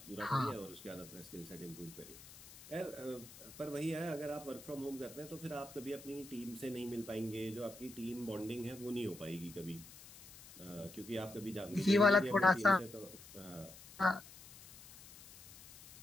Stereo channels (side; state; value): left; noise; hiss, 18 dB below the sound